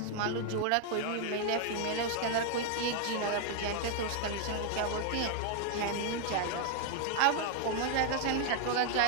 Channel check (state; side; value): different; both; correlation 0.00